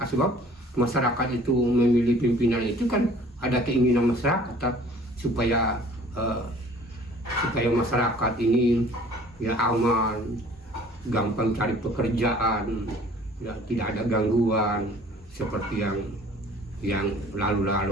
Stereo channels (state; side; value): normal; both; correlation 0.51